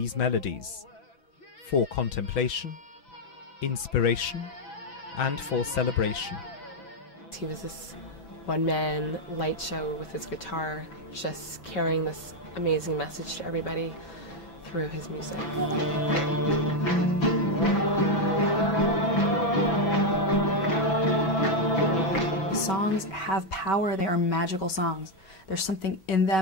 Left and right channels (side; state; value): right; late; 6.0 ms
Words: melodies? For contemplation, inspiration, and for celebration. He was this one-man light show with his guitar, just carrying this amazing message to everybody through his music. Songs have power. They are magical songs. There's something in